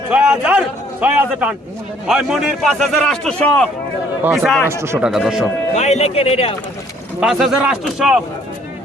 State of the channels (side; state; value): both; normal; correlation 0.62